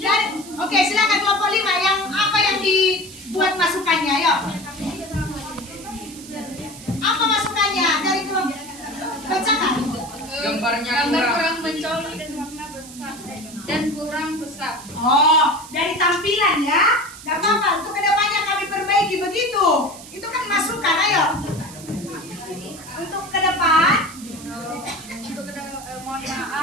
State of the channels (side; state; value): right; noise; hiss, 16 dB below the sound